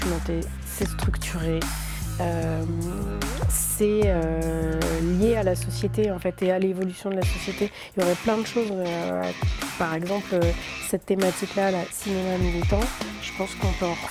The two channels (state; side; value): identical; both; correlation 1.00